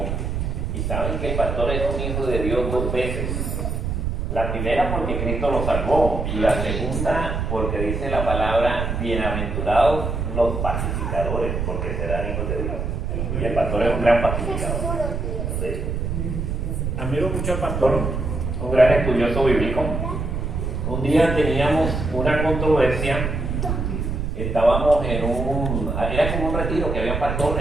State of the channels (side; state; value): right; noise; rumble, 2 dB below the sound